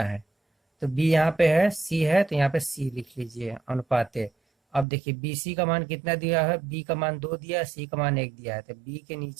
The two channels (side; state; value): left; drops out; at 4.9 s